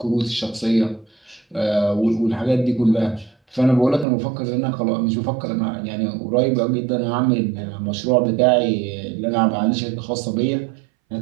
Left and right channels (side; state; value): left; drops out; at 4.0 s